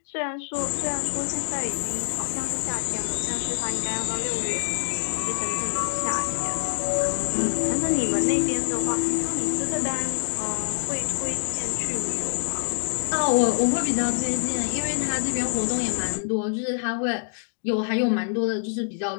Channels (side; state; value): right; silent; digital silence